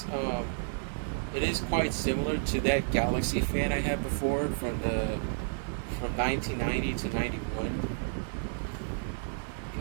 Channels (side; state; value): left; silent; digital silence